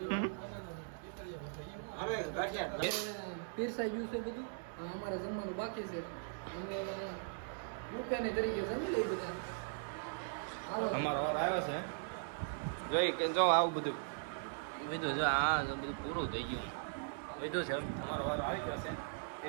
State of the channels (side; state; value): left; silent; digital silence